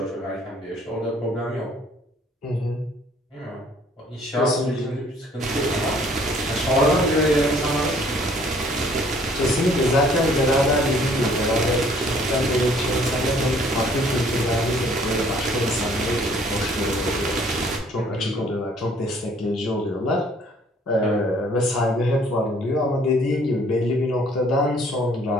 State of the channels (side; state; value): both; normal; correlation 0.59